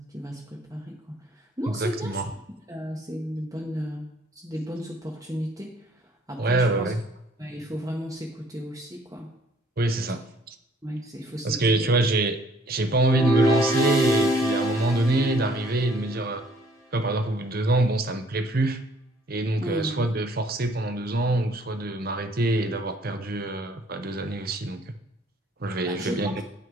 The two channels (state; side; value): normal; both; correlation 0.60